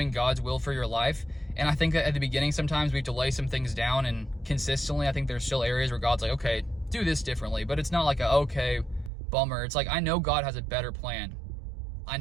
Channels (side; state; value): left; drops out; at 9.1 s